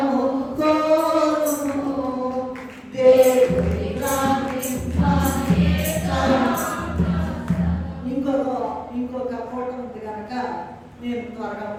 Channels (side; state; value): both; identical; correlation 1.00